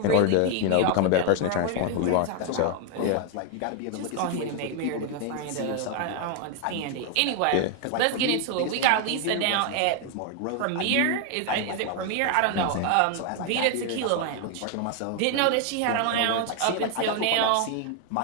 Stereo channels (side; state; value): both; different; correlation 0.00